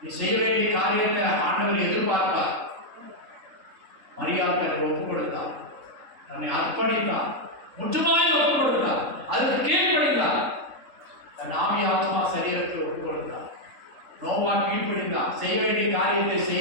நீ செய்ய வேண்டிய காரியத்தை ஆண்டவர் எதிர்பார்ப்பார். மரியாதை தன்னை ஒப்புக் கொடுத்தார், தன்னை அர்ப்பணித்தார், முற்றுமாய் ஒப்புக் கொடுத்தார், அதுக்கு கீழ்ப்படிந்தார். தன் ஆவி ஆத்மா சரீரத்தை ஒப்புக் கொடுத்தார். நோவா கீழ்ப்படிந்தார், செய்ய வேண்டிய காரியத்தை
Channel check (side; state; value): left; late; 3.6 ms